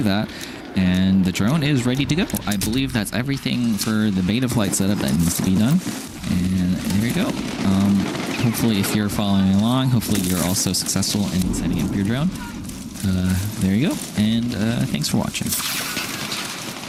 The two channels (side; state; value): both; identical; correlation 1.00